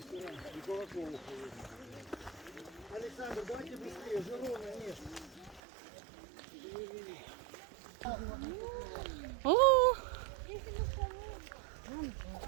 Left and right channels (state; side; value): drops out; left; at 5.6 s